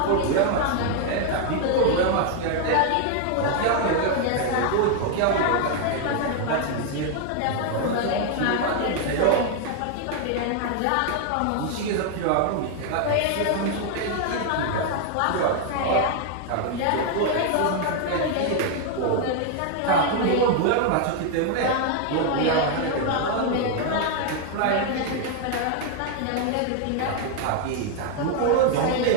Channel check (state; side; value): different; both; correlation 0.00